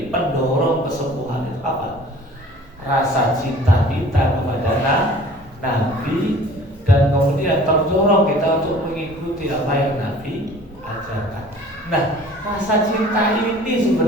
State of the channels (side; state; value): both; normal; correlation 0.48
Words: pendorong kesembuhan itu apa? Rasa cinta kita kepada Nabi, dan kemudian terdorong kita untuk mengikuti apa yang Nabi ajarkan. Nah, rasa cinta ini